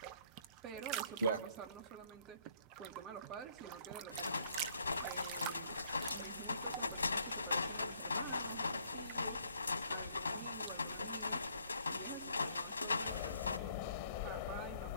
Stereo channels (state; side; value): inverted; both; correlation -0.64